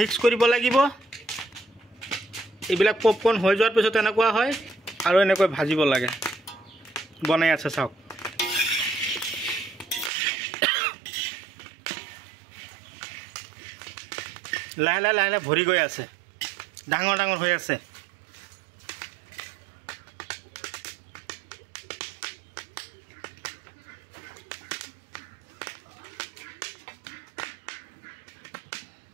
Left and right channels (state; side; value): drops out; left; at 10.1 s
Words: কৰিব লাগিব। এইবিলাক পপকৰ্ন হৈ যোৱাৰ পিছত এনেকুৱা হয় আৰু এনেকৈ ভাজিব লাগে। বনাই আছে চাওক। লাহে লাহে লাহে লাহে ভৰি গৈ আছে, ডাঙৰ ডাঙৰ হৈ আছে।